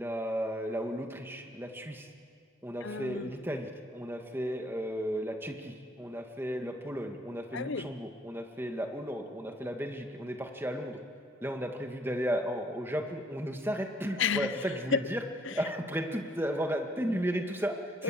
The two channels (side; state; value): both; normal; correlation 0.63